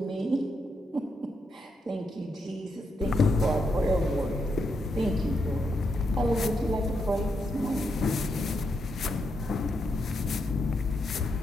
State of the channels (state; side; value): normal; both; correlation 0.81